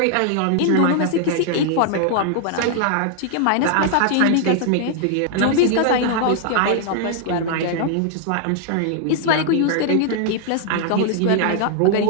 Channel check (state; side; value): different; both; correlation 0.00